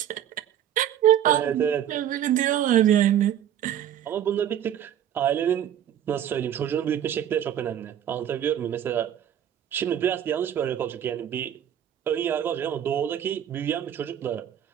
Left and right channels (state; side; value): quieter; left; 10.2 dB